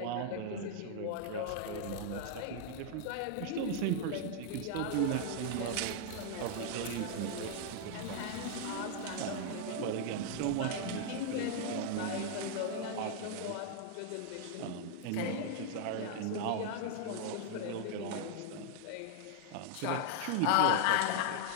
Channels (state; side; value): different; both; correlation 0.00